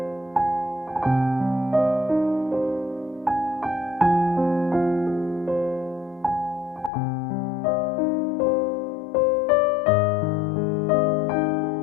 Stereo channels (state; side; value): drops out; right; at 6.9 s